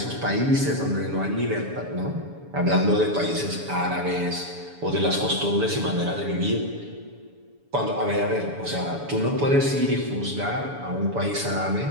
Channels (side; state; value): left; late; 7.0 ms